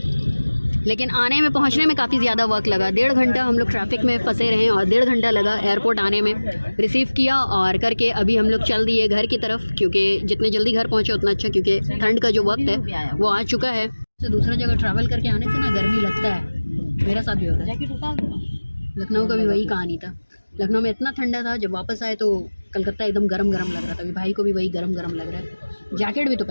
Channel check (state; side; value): inverted; both; correlation -1.00